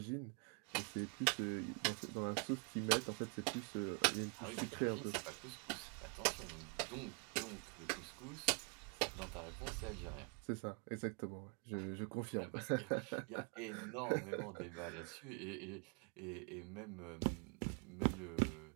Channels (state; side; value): quieter; left; 35.5 dB